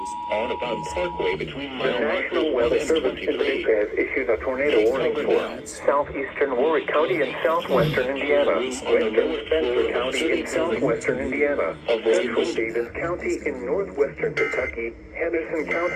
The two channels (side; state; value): both; identical; correlation 1.00